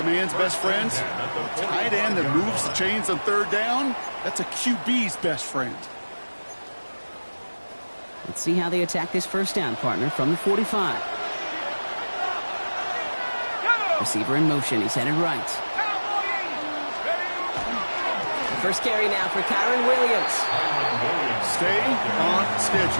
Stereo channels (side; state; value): both; inverted; correlation -1.00